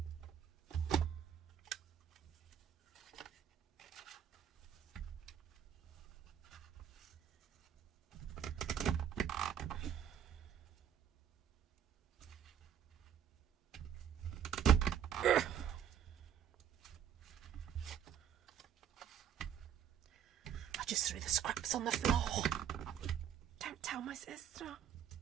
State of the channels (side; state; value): left; quieter; 9.1 dB